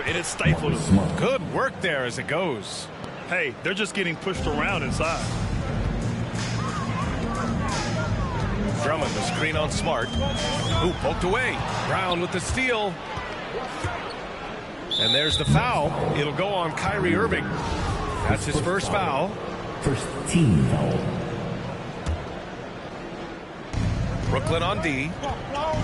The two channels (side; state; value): both; identical; correlation 1.00